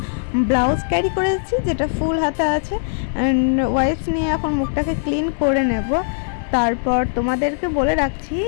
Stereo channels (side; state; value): right; silent; digital silence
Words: ব্লাউজ ক্যারি করেছি যেটা ফুল হাতা আছে। অ্যান্ড ওয়াইপস নিয়ে এখন মুখটাকে ক্লিন করে নেব। তারপর তোমাদেরকে বলে রাখছি,